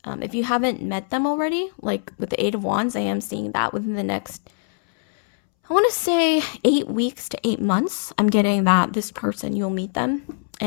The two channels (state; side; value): silent; right; 64 dB below the other